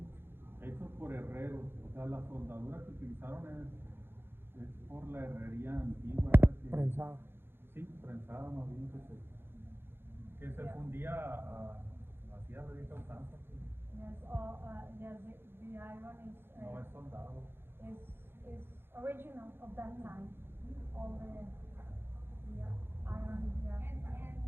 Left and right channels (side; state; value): left; late; 0.11 ms